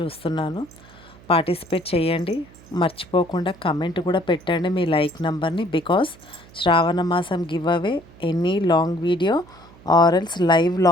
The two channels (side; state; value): right; noise; hum, 23 dB below the sound